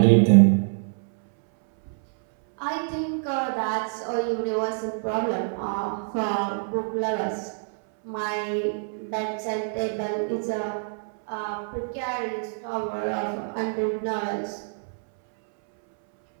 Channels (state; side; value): silent; left; 61 dB below the other